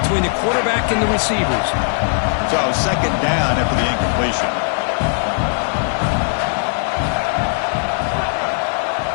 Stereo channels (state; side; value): silent; right; 59 dB below the other